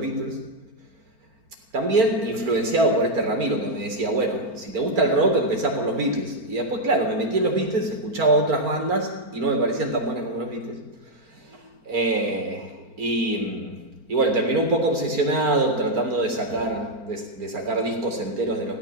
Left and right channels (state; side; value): late; left; 4.4 ms